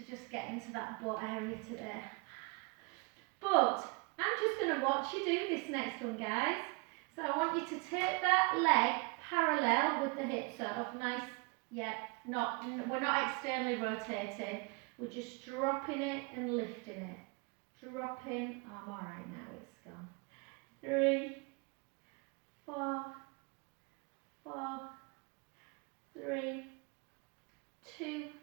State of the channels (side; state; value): left; quieter; 31.2 dB